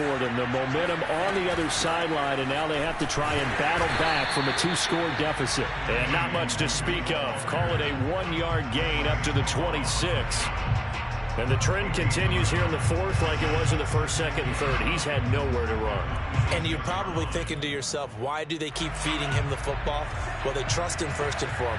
them. The momentum on the other sideline, and now they have to try and battle back from a 2-score deficit. And not much to speak of. Call it a 1-yard gain up to the 26. And the trend continues here in the 4th like it was in the 1st, 2nd, and 3rd. He's had nowhere to run. And you're probably thinking to yourself, why do they keep feeding him the football? Well, they trust him first and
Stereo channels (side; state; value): both; identical; correlation 1.00